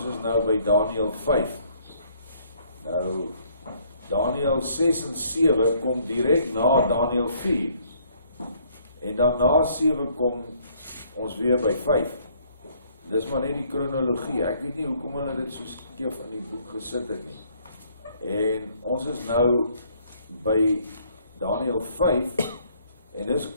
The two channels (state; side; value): inverted; both; correlation -0.64